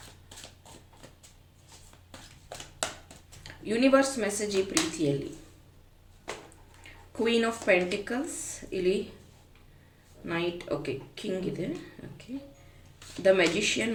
ಯೂನಿವರ್ಸ್ ಮೆಸೇಜ್ ಈ ಪ್ರೀತಿಯಲ್ಲಿ ಕ್ವೀನ್ ಆಫ್ ಪೆಂಟಿಕಲ್ಸ್, ಇಲ್ಲಿ ನೈಟ್, ಓಕೆ, ಕಿಂಗ್ ಇದೆ, ಓಕೆ. ದ ಮ್ಯಾಜಿಷಿಯನ್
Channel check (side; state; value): both; identical; correlation 1.00